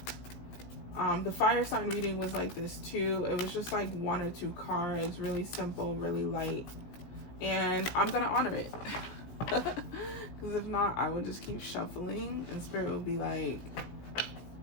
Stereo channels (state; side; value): late; right; 17 ms